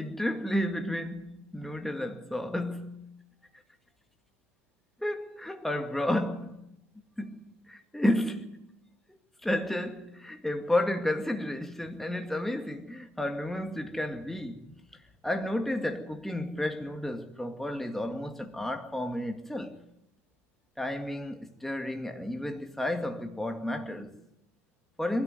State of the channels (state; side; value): normal; both; correlation 0.89